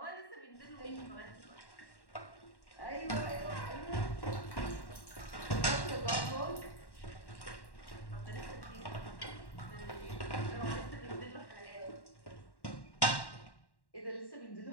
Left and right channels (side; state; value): right; late; 1.1 ms